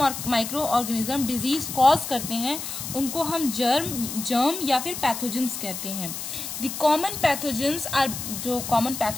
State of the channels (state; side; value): noise; left; hiss, 7 dB below the sound